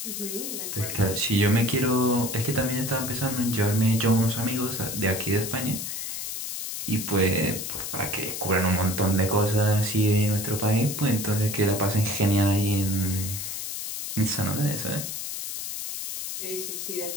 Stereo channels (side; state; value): left; noise; hiss, 5 dB below the sound